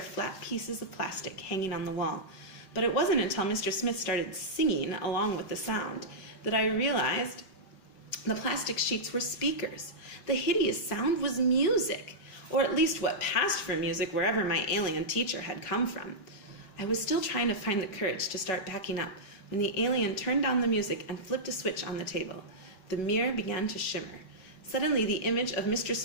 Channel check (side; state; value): right; late; 5.3 ms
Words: flat pieces of plastic hanging on the wall, but it wasn't until Mr. Smith started singing along with the sound that I realized the plastic sheets were speakers. The hideous sound was music, or at least what passed for music wherever my alien teacher had come from. I was still trying to find the courage to start backing up when the alien turned down the music and flipped a switch on the table. The mirror began to shimmer. Suddenly, the image of Mr.